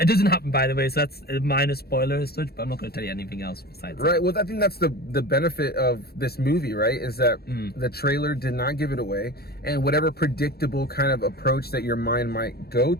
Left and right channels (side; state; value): right; late; 0.46 ms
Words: doesn't happen, by the way, so that's a minor spoiler as such, but I'm not going to tell you anything else besides that. Well, I think that's the benefit of this movie, right? Is that the trailer did not give it away, and whatever predictable kind of approach that your mind might go